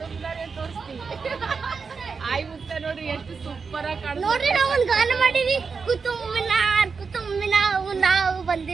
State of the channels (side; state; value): left; quieter; 5.2 dB